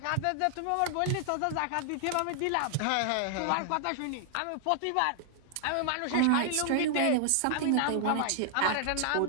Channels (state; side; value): different; both; correlation 0.00